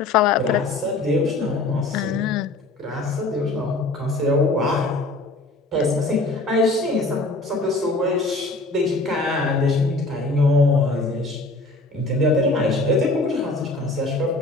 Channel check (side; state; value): right; quieter; 3.0 dB